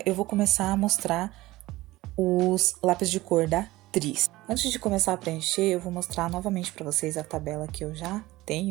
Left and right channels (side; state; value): left; quieter; 18.4 dB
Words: eu vou começar a mostrar os lápis de cor da Tris. Antes de começar a preencher, eu vou mostrar novamente para vocês a tabela que eu já